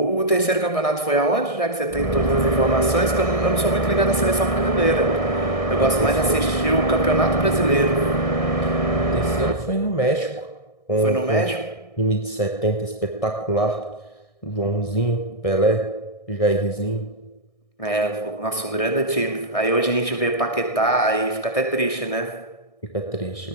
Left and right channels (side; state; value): right; late; 1.6 ms